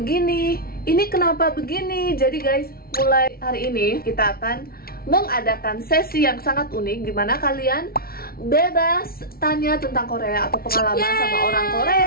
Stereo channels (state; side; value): late; right; 0.44 ms